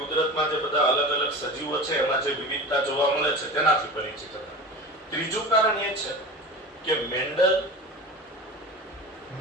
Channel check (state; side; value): normal; both; correlation 0.32